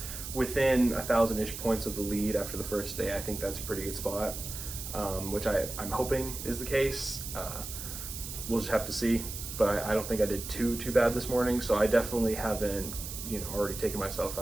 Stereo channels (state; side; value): noise; right; hiss, 8 dB below the sound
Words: within 1,000-ish points of the lead after the first day, I think that's a pretty good spot, which I'm hoping is the case. We'll just have to see, but I don't think I did too bad this morning. So I definitely haven't already taken myself